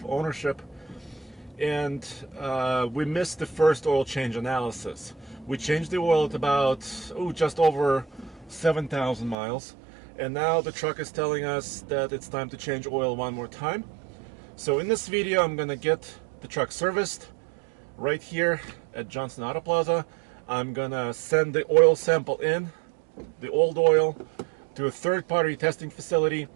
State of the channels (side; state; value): left; drops out; at 9.3 s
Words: ownership. And we missed the first oil change analysis. We changed the oil at about, just over 7,000 miles. And now the truck is telling us that it's time to change oil one more time. So in this video, I'm gonna get the truck serviced right here at Johnson Auto Plaza. I'm gonna send the oil sample in, the old oil, to a third-party testing facility.